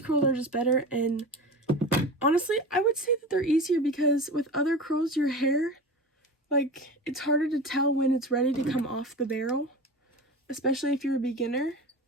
curls are just better. And honestly, I would say that they're easier because with other curls, your hair, like, it's harder to tell when it's ready to come off the barrel, especially if you're a beginner.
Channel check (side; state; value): both; normal; correlation 0.31